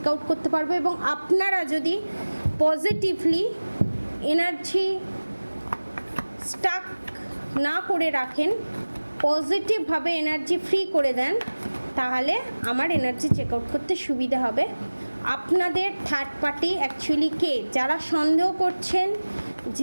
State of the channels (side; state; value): both; inverted; correlation -1.00